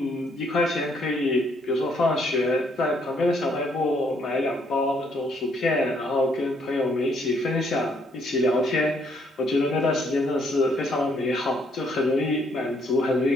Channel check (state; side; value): normal; both; correlation 0.69